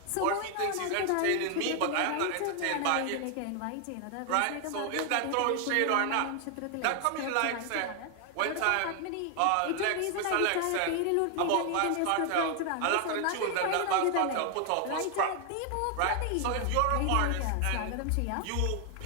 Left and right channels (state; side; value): different; both; correlation 0.00